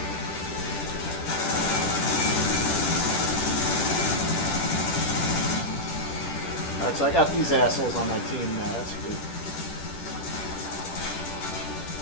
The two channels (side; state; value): right; late; 10 ms